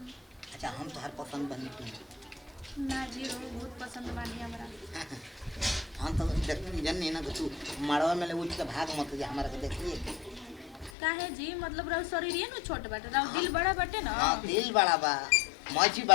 अच्छा हम तो हर पसंद बनी तू ना जी वो बहुत पसंद बानी हमरा हम तो जन नहीं ना कि तू मड़वा में ले उठ के भाग मत जा हमारा के देखिए काहे जी मतलब रहो शरीर न छोट बाटे रहो दिल बड़ा बाटे ना हाँ दिल बड़ा बा मौजी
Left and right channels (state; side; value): drops out; right; at 10.9 s